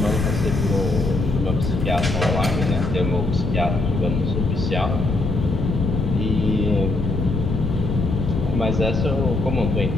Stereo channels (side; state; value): left; noise; rumble, 1 dB below the sound